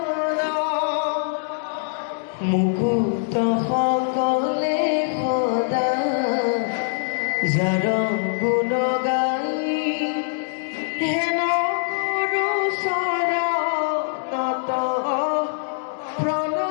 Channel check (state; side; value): silent; right; digital silence